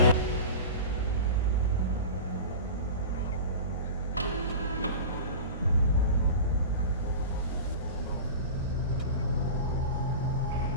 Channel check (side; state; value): both; inverted; correlation -0.31